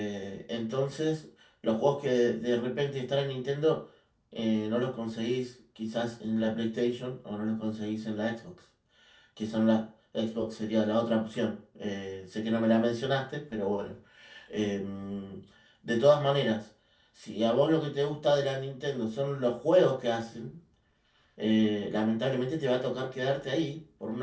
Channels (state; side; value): identical; both; correlation 1.00